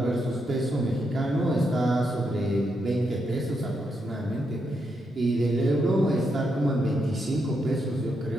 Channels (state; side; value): normal; both; correlation 0.81